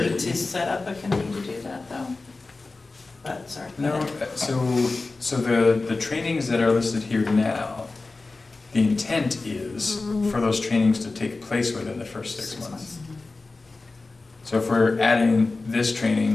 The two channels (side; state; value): right; quieter; 3.6 dB